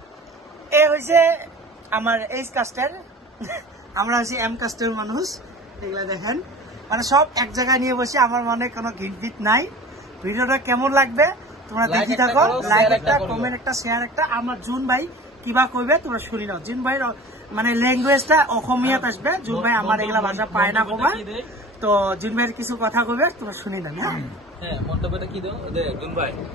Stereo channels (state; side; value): normal; both; correlation 0.40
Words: এ হয়েছে আমার এইচ কাস্টের, আমরা হচ্ছে এম কাস্টের মানুষ। এগুলা দেখেন, মানে সব এক জায়গায় নিয়ে বসে। আমার মনে কোনো ঘিট নাই। ভিডিওটা কেমন লাগবে তোমরা দেখি থাকো। লাইক একটা, কমেন্ট একটা, শেয়ার একটা। আমার জুন ভাই কিবা কইবে তোমরা শুনি নাও। জুন ভাই মানে ল্যাঙ্গুয়েজটা অসমীয়াত আসবে। জুন ভাই আমার এগুলা ভাষা পায় না কবা, তো জুন ভাইয়ের কিছু কথা কইবে তোমরা শুনি না। হ্যাঁ, মন্তব্যটা কি দাও জুন ভাই?